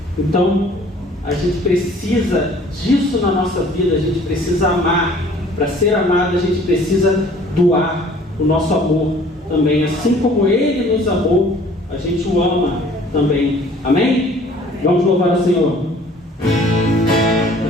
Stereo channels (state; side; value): normal; both; correlation 0.53